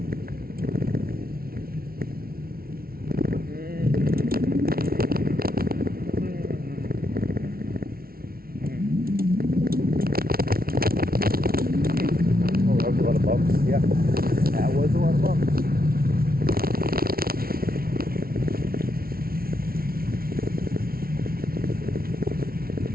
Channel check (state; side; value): late; left; 0.44 ms